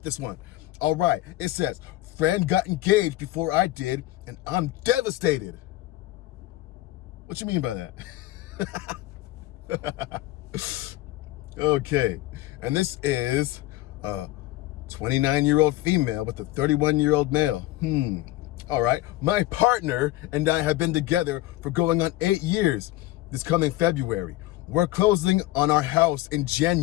this one. All right, it says, friend got engaged before I did, and I'm devastated. What you mean by that? Okay, and this is a 29-year-old female with a 31-year-old male. All right, my partner and I have been together for going on 8 years this coming February. We're closing on our house in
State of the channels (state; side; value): quieter; right; 16.7 dB